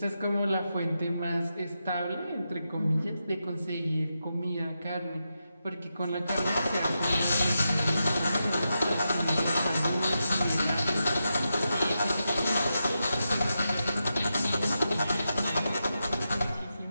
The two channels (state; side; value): inverted; both; correlation -0.87